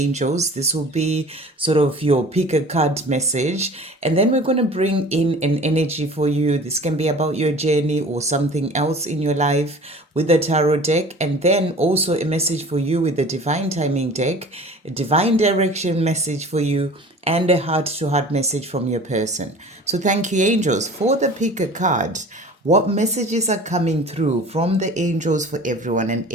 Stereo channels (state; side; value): normal; both; correlation 0.43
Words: This will be sort of your pick a card message, and then we're going to bring in an energy for you. This can be about your journey or something else in your life with the tarot deck, and then also a message for you with the divine timing deck, a divine direction message for you, and a heart to heart message from your person. So thank you, angels, for the pick a card. What messages are coming through from the angels for everyone? An